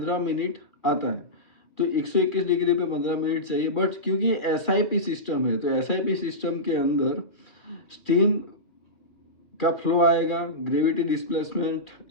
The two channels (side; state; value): right; late; 2.4 ms